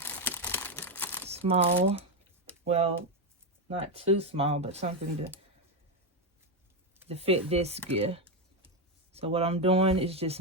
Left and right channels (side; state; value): both; normal; correlation 0.07